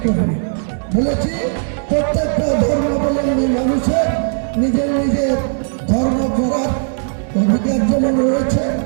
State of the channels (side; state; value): left; silent; digital silence